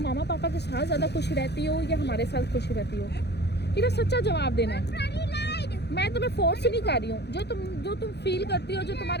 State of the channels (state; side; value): late; right; 0.49 ms